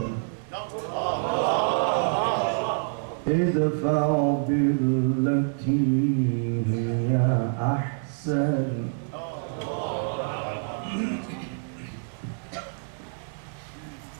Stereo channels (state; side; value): silent; left; 60 dB below the other